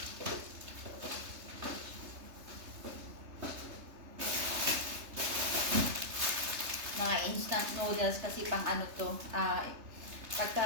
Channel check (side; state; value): left; late; 3.3 ms